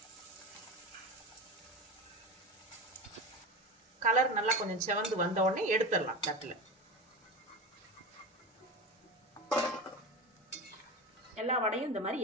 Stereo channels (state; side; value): normal; both; correlation 0.25